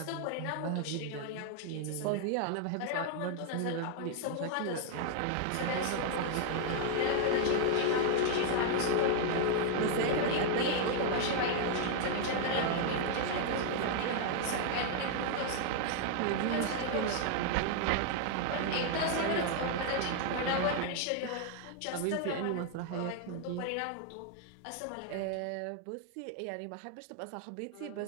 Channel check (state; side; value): different; both; correlation 0.00